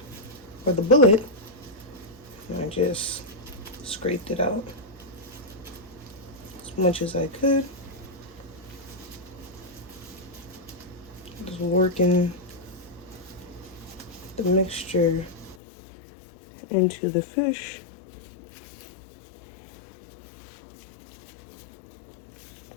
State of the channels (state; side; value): drops out; right; at 15.6 s